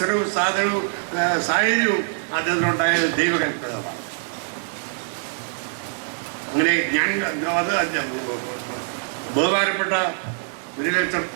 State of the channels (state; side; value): silent; left; 57 dB below the other